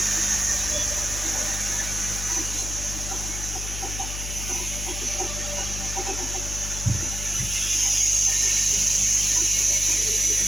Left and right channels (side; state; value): left; noise; hum, 6 dB below the sound